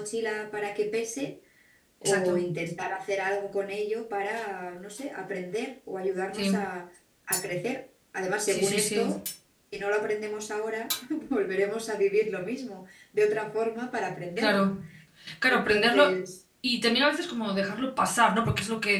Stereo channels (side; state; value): both; identical; correlation 1.00